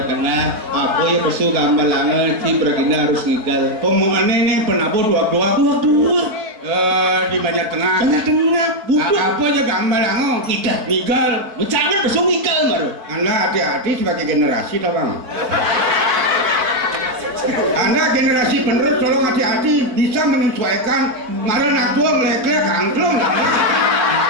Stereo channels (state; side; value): late; left; 4.6 ms